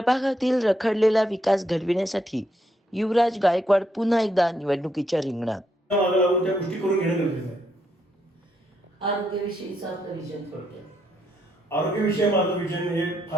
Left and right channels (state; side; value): normal; both; correlation 0.77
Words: रखडलेला विकास घडविण्यासाठी युवराज गायकवाड पुन्हा एकदा निवडणुकीच्या रिंगणात. मागे लागून त्या गोष्टी करून घेणं गरजेचं आहे. आरोग्याविषयीचं आपलं विजन थोडक्यात. आरोग्याविषयी माझं विजन हे